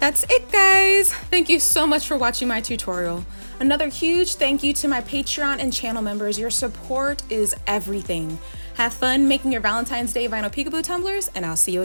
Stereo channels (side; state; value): both; inverted; correlation -1.00